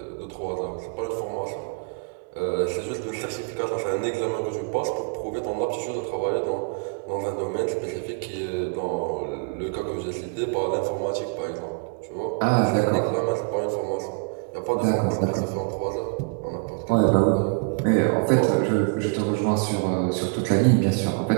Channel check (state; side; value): quieter; left; 38.1 dB